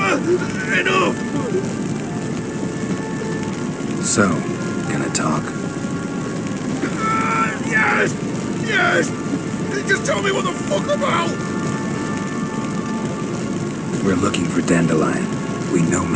Enough! So, gonna talk? Yes! Yes! Just tell me what the fuck about! We're looking for Dandelion. We know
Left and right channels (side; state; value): left; noise; hum, 26 dB below the sound